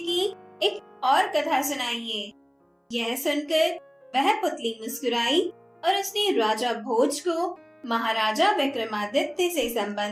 एक और कथा सुनाइए। यह सुनकर वह पुतली मुस्कुराई और उसने राजा भोज को महाराजा विक्रमादित्य से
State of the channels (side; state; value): both; identical; correlation 1.00